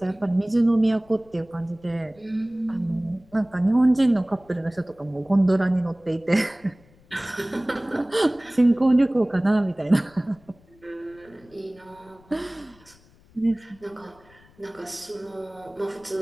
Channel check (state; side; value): noise; left; rumble, 28 dB below the sound